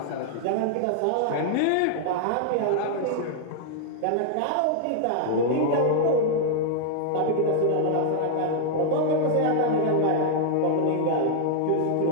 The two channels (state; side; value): different; both; correlation -0.01